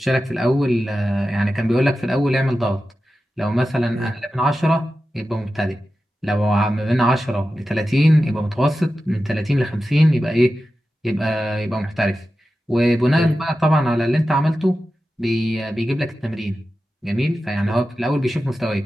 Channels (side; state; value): both; normal; correlation 0.93